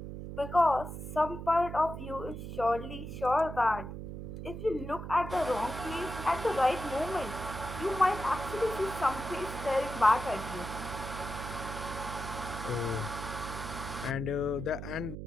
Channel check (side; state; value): right; noise; hum, 8 dB below the sound